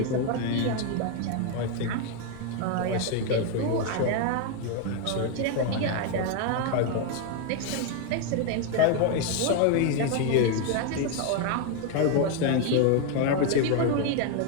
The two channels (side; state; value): both; different; correlation 0.01